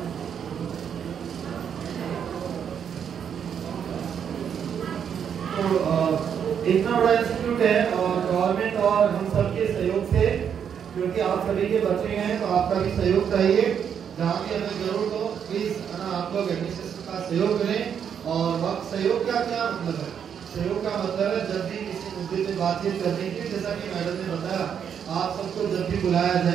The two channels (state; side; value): quieter; left; 8.0 dB